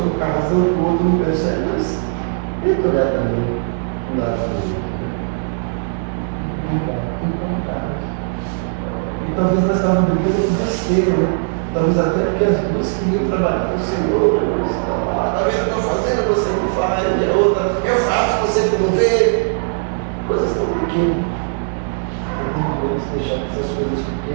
com a razão que o outro não percebe, mas tenta olhar também o lado do outro. Tem vontade. E talvez nós estávamos brigando com besteira, né? Talvez até porque as duas queriam trabalhar para o Senhor, né? Você está lá, está vendo o que eu estou fazendo, você não faz, e a outra, eu faço, você não vê. Coisas tão pequenas. Não podemos deixar que essas coisas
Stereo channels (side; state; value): left; silent; 67 dB below the other